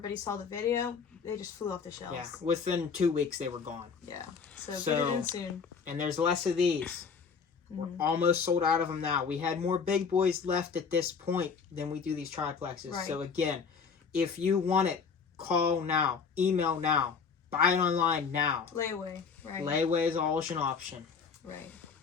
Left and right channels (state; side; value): quieter; right; 5.8 dB